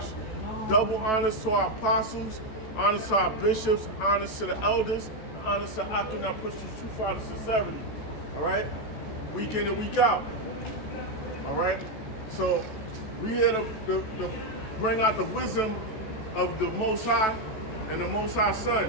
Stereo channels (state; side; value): late; right; 14 ms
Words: Double honors to our apostles, honors to our bishops, honors to the elders, honors to Akim that push the truth out of sincerity. All right? Week in and week out. All right? So we here to bring out the wisdom of the Most High and the Most High